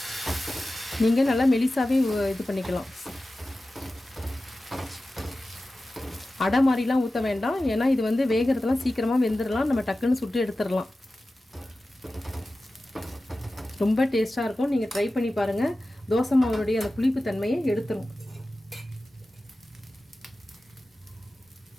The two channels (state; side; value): normal; both; correlation 0.95